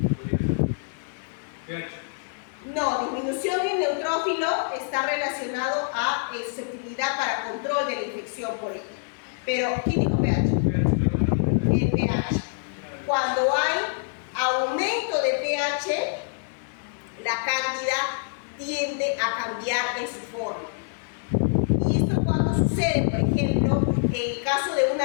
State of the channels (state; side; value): silent; right; digital silence